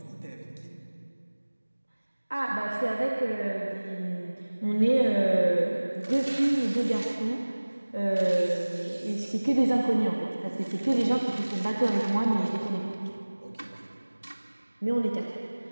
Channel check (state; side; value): inverted; both; correlation -1.00